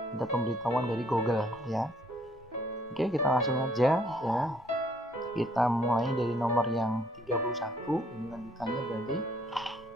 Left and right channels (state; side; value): normal; both; correlation 0.65